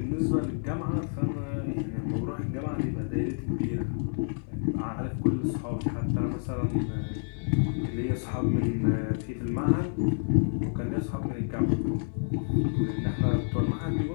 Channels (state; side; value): silent; right; 57 dB below the other